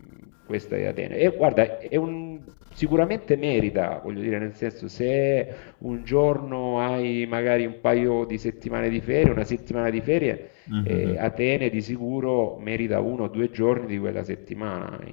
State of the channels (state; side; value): silent; right; digital silence